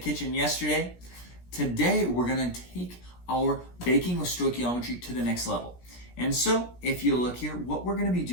yesterday. Today we're going to take our baking with stoichiometry to the next level. And so if you look here, what we're going to be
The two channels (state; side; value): late; right; 17 ms